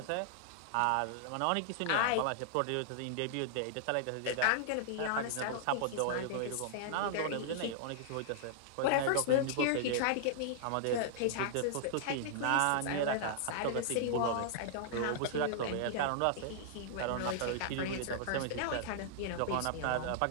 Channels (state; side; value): different; both; correlation -0.01